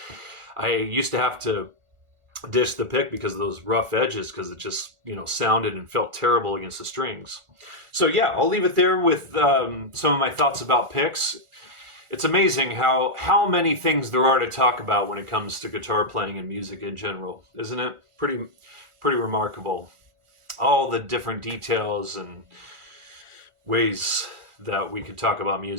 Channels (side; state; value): left; late; 1.4 ms